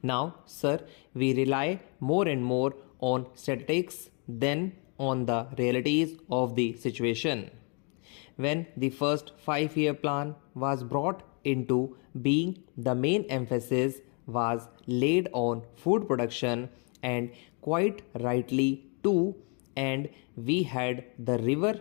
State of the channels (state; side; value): quieter; right; 36.8 dB